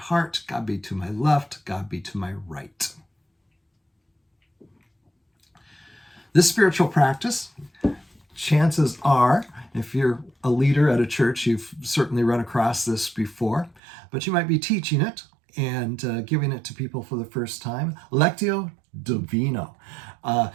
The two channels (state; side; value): drops out; left; at 13.8 s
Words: God be to my left, God be to my right. This spiritual practice, chances are, if you're a leader at a church, you've certainly run across this before, but you might be teaching it and giving it to people for the first time. Lectio Divina.